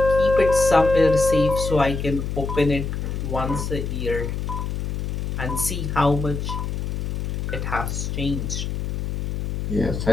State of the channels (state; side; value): noise; left; hum, 3 dB below the sound